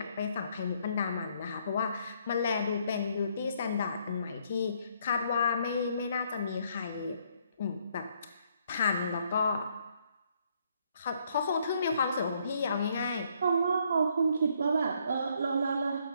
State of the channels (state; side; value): inverted; both; correlation -0.69